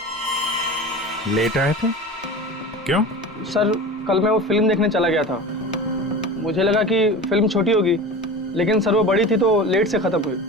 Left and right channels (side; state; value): both; normal; correlation 0.33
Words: लेट आए थे? क्यों? सर कल मैं वो फिल्म देखने चला गया था। मुझे लगा कि फिल्म छोटी होगी, लेकिन सर वो बड़ी थी तो लेट से खत्म हुई,